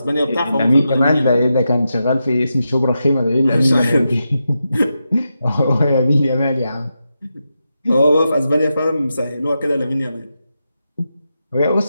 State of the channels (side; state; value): both; inverted; correlation -0.88